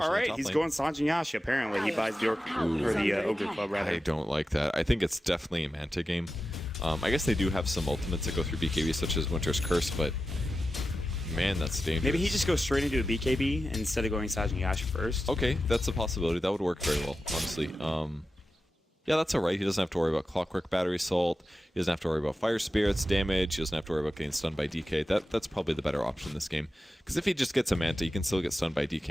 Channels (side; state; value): both; normal; correlation 0.92